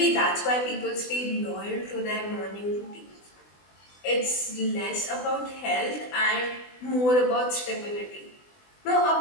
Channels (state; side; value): late; right; 20 ms